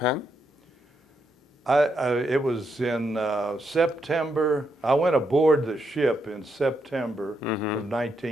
It was in September. I went aboard the ship in September of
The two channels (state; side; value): normal; both; correlation 0.80